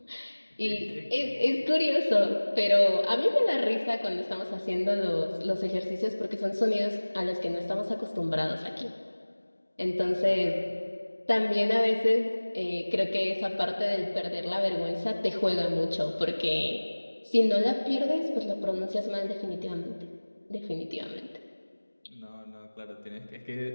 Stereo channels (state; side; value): inverted; both; correlation -1.00